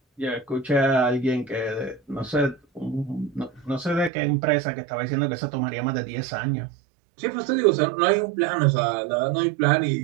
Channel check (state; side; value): drops out; left; at 4.1 s